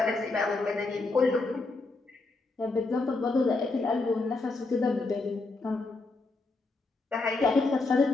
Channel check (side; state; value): right; quieter; 3.4 dB